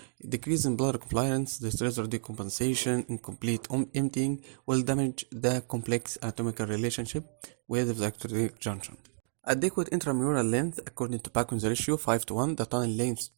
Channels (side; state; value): left; silent; digital silence